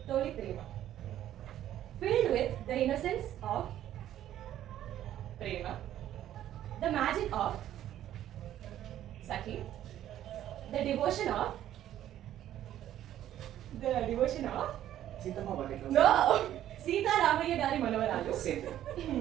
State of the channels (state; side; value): quieter; left; 12.0 dB